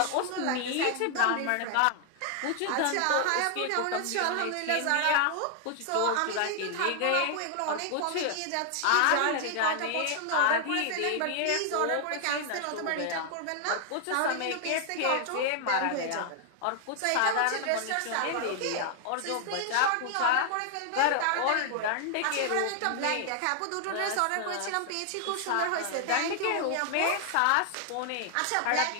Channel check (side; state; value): both; different; correlation 0.00